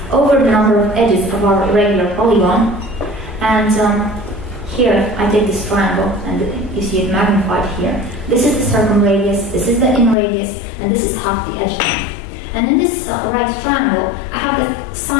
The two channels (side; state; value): right; drops out; at 10.2 s